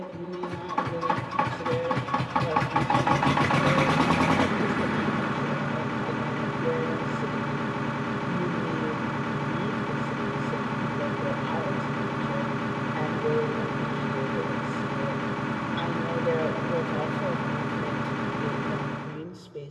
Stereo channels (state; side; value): identical; both; correlation 1.00